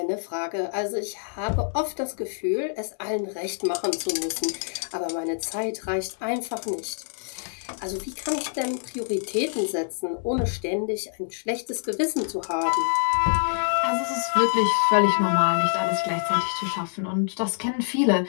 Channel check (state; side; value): silent; right; 61 dB below the other